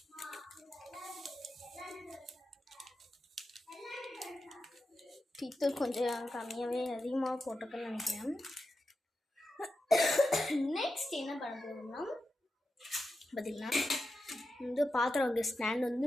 டீத்தூள் கொஞ்சம் கம்மியாகவே அதிகமாக போட்டிருக்கேன்னு நினைக்கிறேன். நெக்ஸ்ட் என்ன பண்ண போகிறோம்னா பார்த்தீங்கன்னா வந்து பாத்திரம் வைக்கிற ஸ்டாண்ட்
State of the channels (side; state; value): both; normal; correlation 0.90